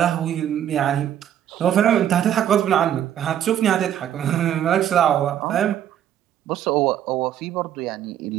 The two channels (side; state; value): left; quieter; 10.5 dB